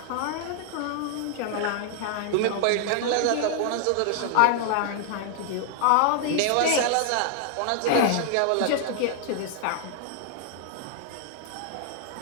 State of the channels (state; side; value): different; both; correlation 0.00